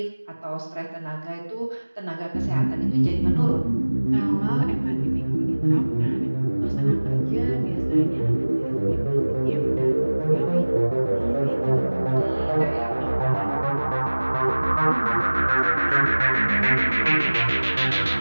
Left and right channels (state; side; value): inverted; both; correlation -1.00